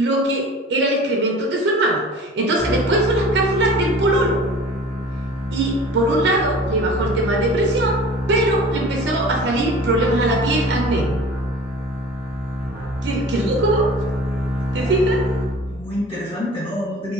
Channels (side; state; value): both; normal; correlation 0.42